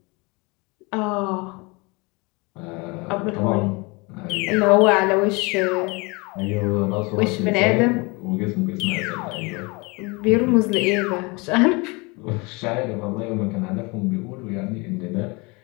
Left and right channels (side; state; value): right; quieter; 27.3 dB